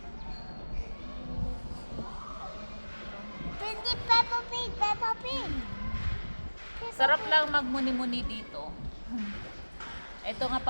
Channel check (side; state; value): both; inverted; correlation -1.00